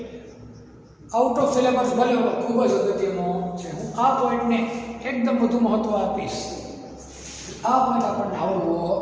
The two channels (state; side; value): identical; both; correlation 1.00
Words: આઉટ ઓફ સિલેબસ ભલે ખૂબ જ અગત્યનો છે, હું આ પોઈન્ટને એકદમ વધુ મહત્વ આપીશ। આ પોઈન્ટ આપણને આવડવો